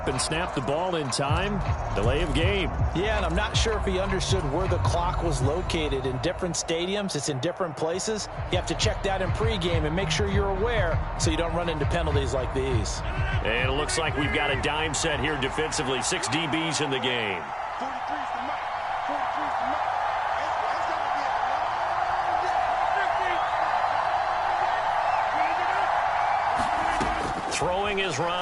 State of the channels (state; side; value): identical; both; correlation 1.00